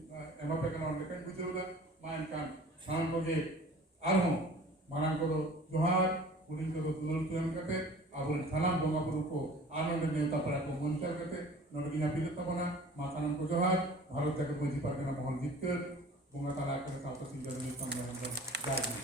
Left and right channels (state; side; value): normal; both; correlation 0.45